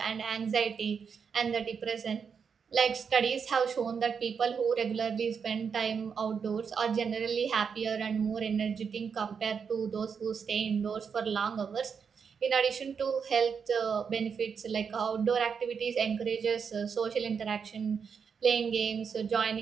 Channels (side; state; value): left; quieter; 6.4 dB